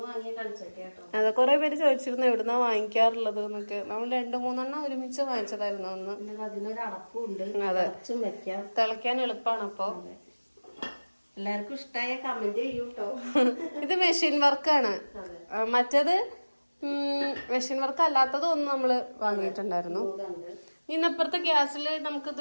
വാങ്ങിയ കൽച്ചട്ടി കേട്ടോ. അതെ, കുറെ പേര് ചോദിച്ചിരുന്നു എവിടുന്നാ വാങ്ങിക്കാറുള്ളത് എന്നൊക്കെ. നമ്മൾ 2-3 ഒരുമിച്ച് വാങ്ങിച്ചതായിരുന്നു അന്ന്. അതിനൊരു അടപ്പുണ്ട്, വെക്കാം. തിളയ്ക്കാൻ എളുപ്പമാണ്. അപ്പൊ എല്ലാവർക്കും ഇഷ്ടമായ കമന്റ് ചെയ്യൂട്ടോ. ഇത് മെഷീൻ വർക്കാണ്. മറ്റേത് മെഷീൻ വർക്ക് അല്ലാത്തതും ഒന്ന് നമ്മള് വാങ്ങിയിട്ടുണ്ടായിരുന്നു. ഇന്നപ്പുറത്തെ ഗ്യാസിൽ നമുക്ക് ഇത്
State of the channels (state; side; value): inverted; both; correlation -1.00